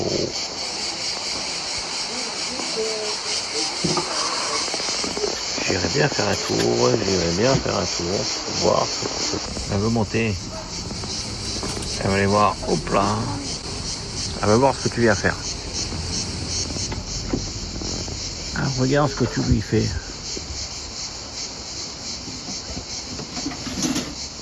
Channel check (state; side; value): identical; both; correlation 1.00